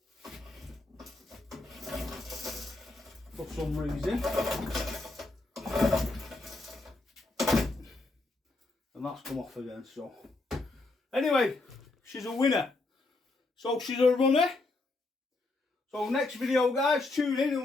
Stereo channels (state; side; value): quieter; right; 3.1 dB